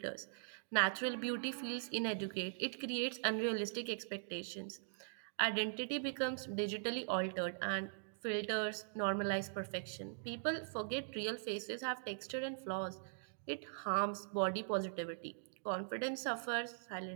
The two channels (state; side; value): silent; left; digital silence